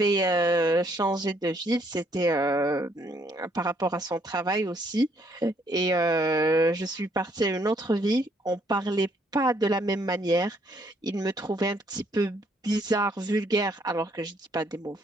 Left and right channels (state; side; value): normal; both; correlation 0.68